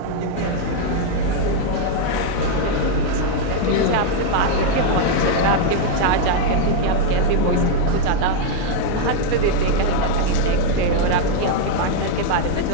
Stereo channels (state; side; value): different; both; correlation 0.00